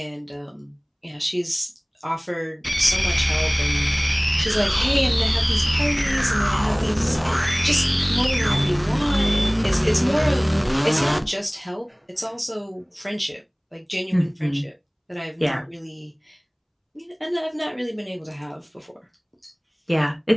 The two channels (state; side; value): identical; both; correlation 1.00